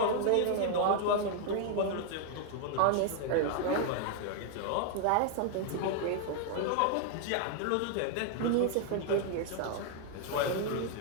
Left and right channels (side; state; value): both; different; correlation 0.00